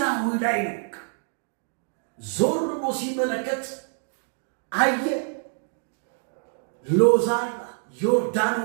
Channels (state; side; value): silent; left; digital silence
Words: ላይ ነው። ዞር ብሎ ሲመለከት አየ ሎዛን